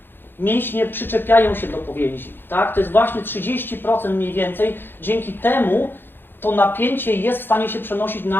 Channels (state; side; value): late; right; 0.10 ms